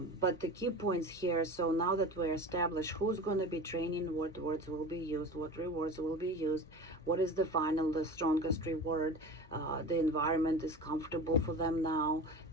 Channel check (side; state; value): both; normal; correlation 0.33